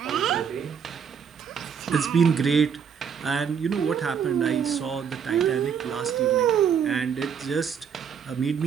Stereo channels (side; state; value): left; quieter; 7.2 dB